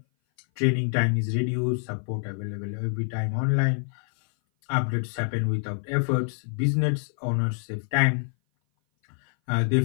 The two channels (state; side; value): silent; right; 58 dB below the other